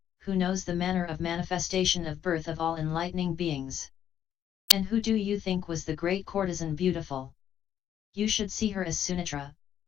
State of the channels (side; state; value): right; quieter; 9.9 dB